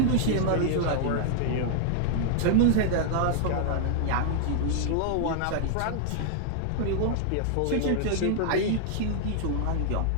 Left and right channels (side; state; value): both; different; correlation -0.01